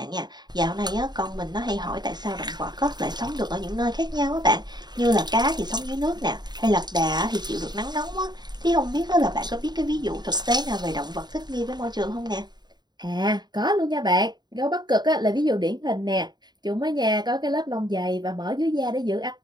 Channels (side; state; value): left; late; 0.20 ms